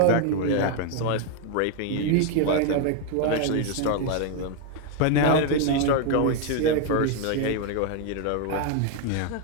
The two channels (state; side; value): different; both; correlation 0.01